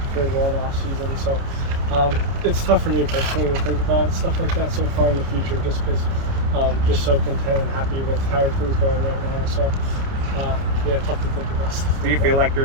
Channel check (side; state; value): left; late; 30 ms